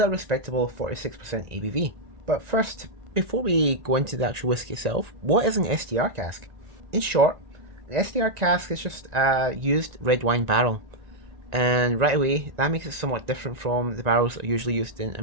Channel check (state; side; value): late; left; 1.9 ms